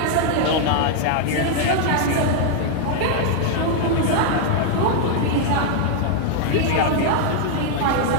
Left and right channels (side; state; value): both; different; correlation 0.00